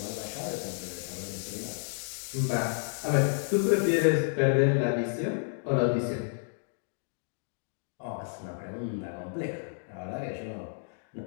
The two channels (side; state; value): right; silent; digital silence